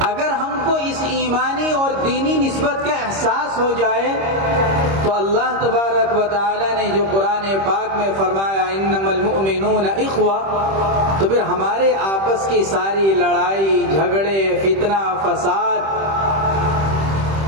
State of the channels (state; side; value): late; left; 26 ms